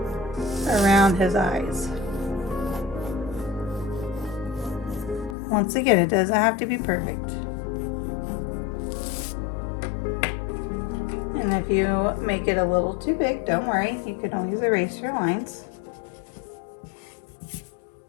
around his eyes. Once again, it doesn't have to be perfect. And if you make it a little too big, don't worry, you can always erase your lines.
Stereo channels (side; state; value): right; drops out; at 5.4 s